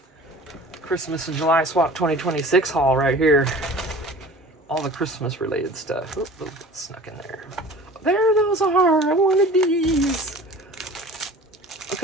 Christmas and July Swap 2026 haul right here. All the Christmas related stuff. Oop, oop, snuck in there. There those are. I wanted these.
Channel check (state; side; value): normal; both; correlation 0.43